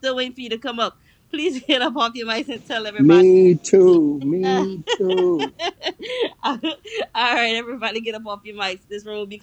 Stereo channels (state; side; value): identical; both; correlation 1.00